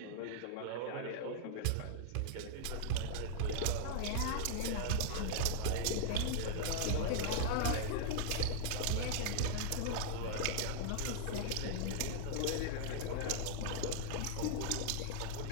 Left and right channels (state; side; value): different; both; correlation -0.01